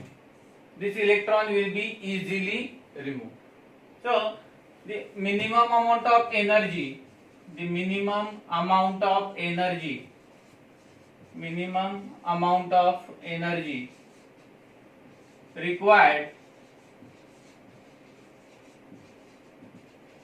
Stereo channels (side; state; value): both; identical; correlation 1.00